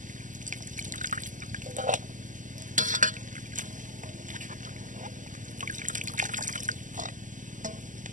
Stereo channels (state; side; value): late; left; 0.37 ms